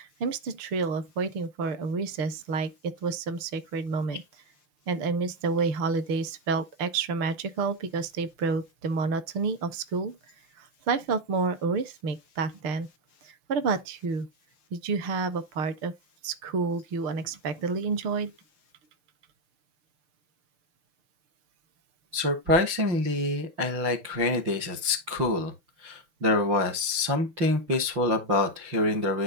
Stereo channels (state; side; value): late; left; 5.8 ms